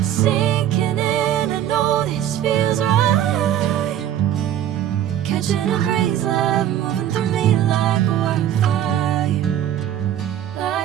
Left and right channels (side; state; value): left; quieter; 11.0 dB